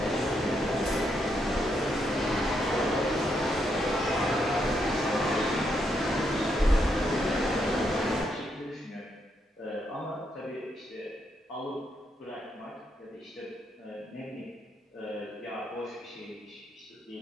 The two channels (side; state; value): both; normal; correlation 0.78